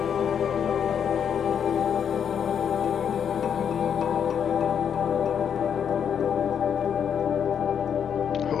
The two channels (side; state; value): right; quieter; 8.0 dB